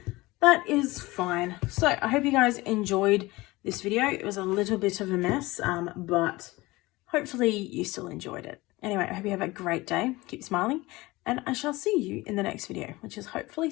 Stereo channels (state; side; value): quieter; right; 20.8 dB